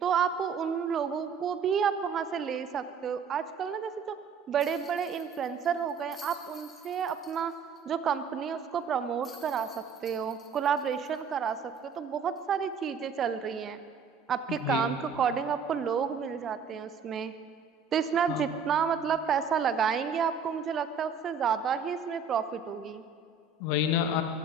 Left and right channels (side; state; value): left; quieter; 5.3 dB